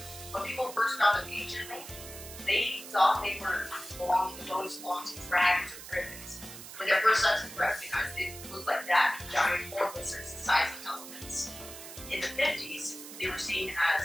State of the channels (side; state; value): right; noise; hiss, 13 dB below the sound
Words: When people first found them anciently, they thought they were belonging to dragons or griffins. When their first sons were recognized, they looked like that, giant horned lizards the size of elephants. In the 50s, they were seen